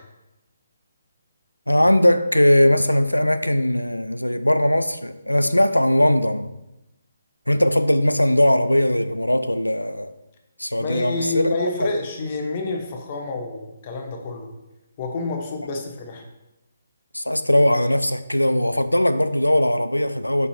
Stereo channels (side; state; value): both; inverted; correlation -0.97